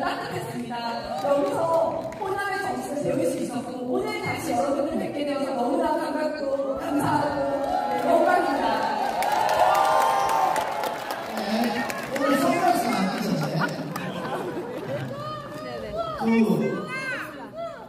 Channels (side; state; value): both; identical; correlation 1.00